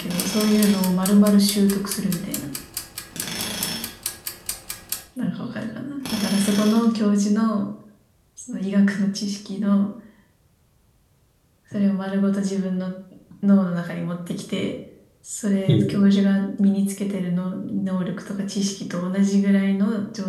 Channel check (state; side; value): identical; both; correlation 1.00